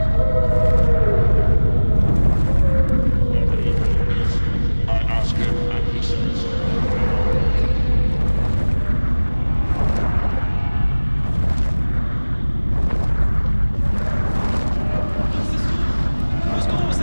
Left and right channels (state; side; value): inverted; both; correlation -1.00